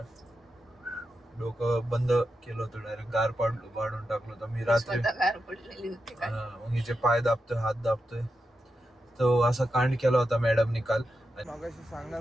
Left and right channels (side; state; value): both; normal; correlation 0.88